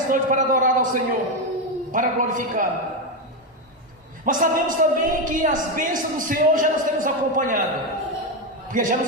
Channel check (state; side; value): normal; both; correlation 0.09